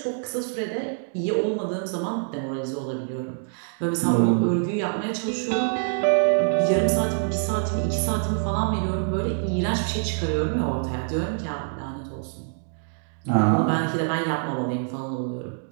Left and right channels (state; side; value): silent; left; digital silence